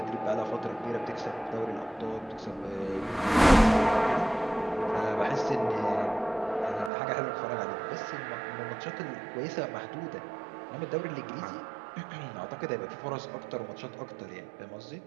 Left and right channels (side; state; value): left; drops out; at 6.9 s